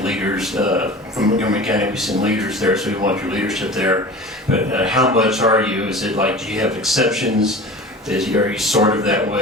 leaders from Montgomery County. We've seen leaders there, so we want your leadership there. But how much are you? Is it like, do you have exceptions? Are you sort of that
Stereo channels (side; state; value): both; normal; correlation 0.37